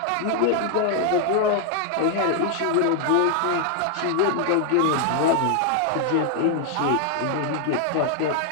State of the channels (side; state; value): both; different; correlation 0.00